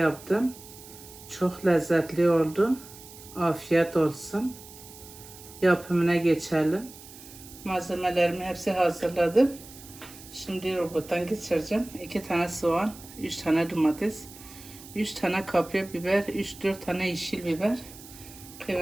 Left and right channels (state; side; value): noise; right; hiss, 18 dB below the sound